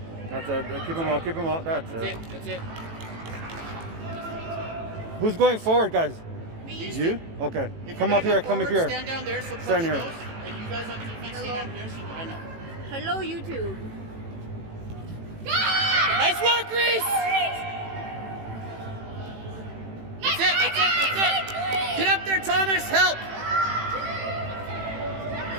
That's it. Keep him out. Keep him out. That's That's it. it. That's it. Who's going forward, guys? These You? two. Okay. If Come you're up gonna here. go Come up forward, here. Stand down there so coach Stand here. knows. And you guys on defense stand down here so I know. Hello, YouTube. Nice work, Reese. That's it. That's it. That's it. Get up there, Thomas. Help.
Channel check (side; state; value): left; late; 18 ms